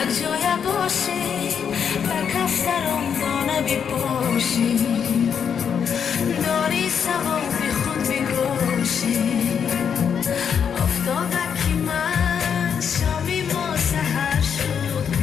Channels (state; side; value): quieter; right; 7.4 dB